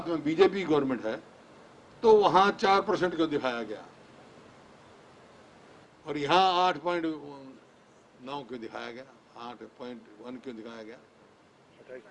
में बीजेपी गवर्नमेंट है, तो वहां 4% क्यों दिखाया गया और यहाँ 8.9 क्यों दिखाया गया, 8.1 क्यों दिखाया गया,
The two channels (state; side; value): identical; both; correlation 1.00